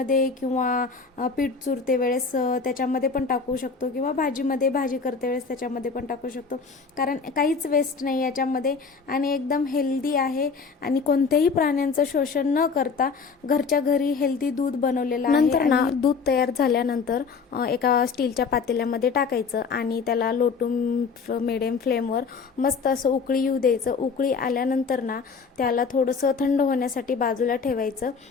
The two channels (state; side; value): quieter; right; 5.2 dB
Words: किंवा पीठ चुरते वेळेस त्याच्यामध्ये पण टाकू शकतो किंवा भाजी करते वेळेस त्याच्यामध्ये पण टाकू शकतो, कारण काहीच वेस्ट नाही याच्यामध्ये आणि एकदम हेल्दी आहे आणि कोणत्याही प्राण्यांचं शोषण न करता घरच्या घरी हेल्दी दूध बनवलेलं आहे. नंतर ना दूध तयार झाल्यानंतर एका स्टीलच्या पातेल्यामध्ये टाकायचं आणि त्याला लो टू मिडियम फ्लेमवर मस्त असं उकळी येऊ द्यायचं. उकळी आल्यानंतर ना त्याला थोडंसं थंड होण्यासाठी बाजूला ठेवायचं